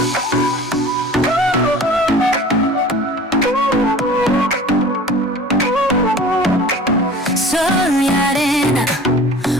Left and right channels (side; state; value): both; normal; correlation 0.43